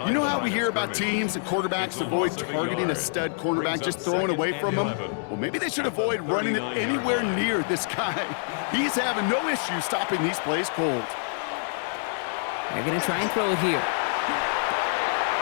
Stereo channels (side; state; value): right; silent; digital silence